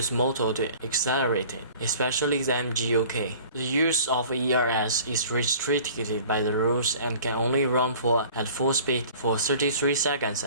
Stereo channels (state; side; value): inverted; both; correlation -0.47